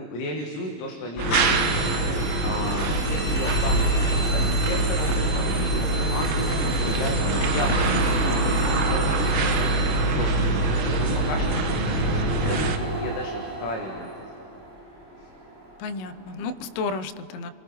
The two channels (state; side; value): late; right; 26 ms